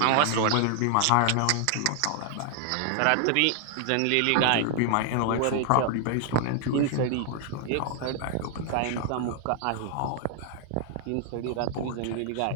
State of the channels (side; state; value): both; different; correlation 0.00